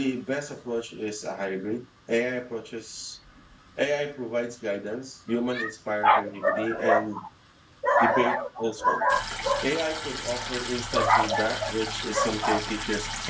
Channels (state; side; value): identical; both; correlation 1.00